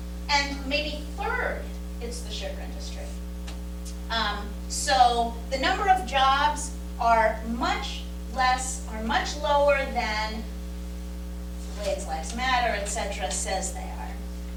And maybe third, it's the sugar industry. So the number of jobs are much lower than Glades Lives Matter, etc. says they are.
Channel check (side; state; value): both; identical; correlation 1.00